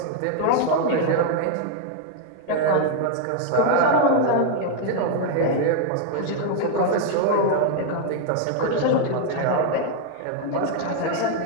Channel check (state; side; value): different; both; correlation 0.00